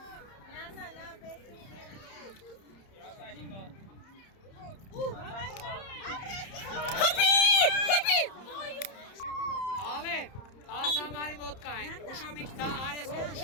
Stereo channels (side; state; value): right; late; 30 ms